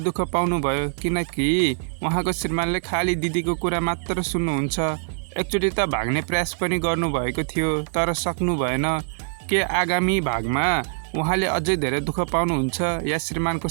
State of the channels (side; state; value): left; silent; 63 dB below the other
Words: दुःख पाउनुभयो, किनकि उहाँको श्रीमानले खाली दिदीको कुरा मात्र सुन्नुहुन्छ। एकचोटि त भाग्ने प्रयास पनि गर्नुभएको थियो तर सक्नु भएन। के आगामी भागमा उहाँले अझै धेरै दुःख पाउनुहुन्छ या श्रीमानको